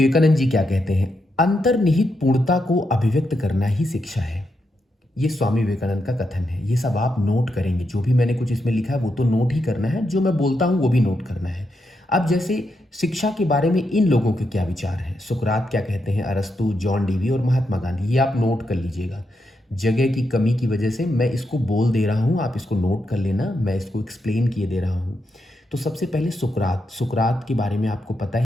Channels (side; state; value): both; normal; correlation 0.83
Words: जी क्या कहते हैं, अंतर्निहित पूर्णता को अभिव्यक्त करना ही शिक्षा है। ये स्वामी विवेकानंद का कथन है। ये सब आप नोट करेंगे, जो भी मैंने कुछ इसमें लिखा है वो तो नोट ही करना है, जो मैं बोलता हूँ वो भी नोट करना है। अब जैसे शिक्षा के बारे में इन लोगों के क्या विचार हैं, सुकरात क्या कहते हैं, अरस्तु, जॉन डीवी और महात्मा गांधी, ये आप नोट कर लीजिएगा। जगह की कमी की वजह से मैं इसको बोल दे रहा हूँ, आप इसको नोट कर लेना, मैं इसको एक्सप्लेन किए दे रहा हूँ। तो सबसे पहले सुकरात, सुकरात के बारे में आपको पता